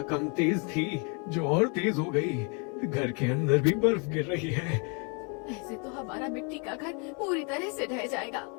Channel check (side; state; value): right; quieter; 35.9 dB